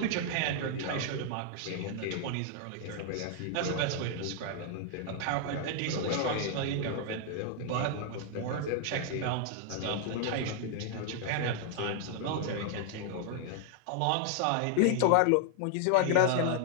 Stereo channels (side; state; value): both; different; correlation -0.01